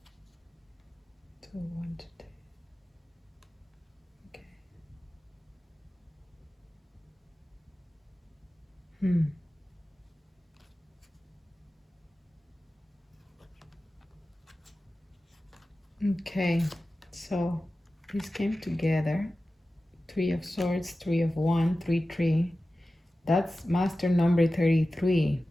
Two, one, two, three. Okay. Okay, so this came together. Three of Swords, Three of Wands, 3, 3. That's master number 33.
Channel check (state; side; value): normal; both; correlation 0.95